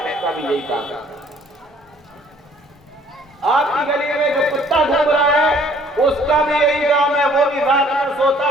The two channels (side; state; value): both; normal; correlation 0.58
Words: کا بھی یہی کام ہے۔ آپ کی گلی میں جو کتا گھوم رہا ہے اس کا بھی یہی کام ہے، وہ بھی رات میں سوتا